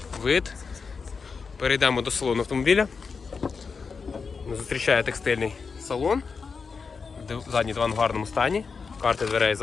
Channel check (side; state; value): right; quieter; 5.2 dB